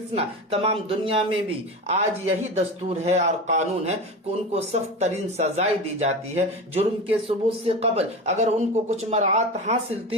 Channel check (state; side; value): normal; both; correlation 0.26